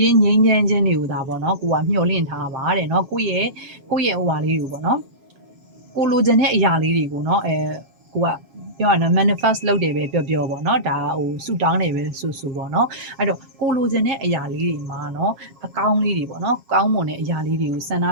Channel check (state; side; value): late; left; 7.3 ms